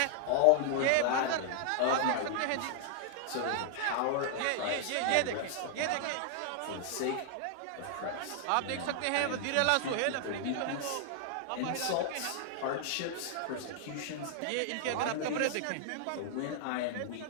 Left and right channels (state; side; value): different; both; correlation 0.00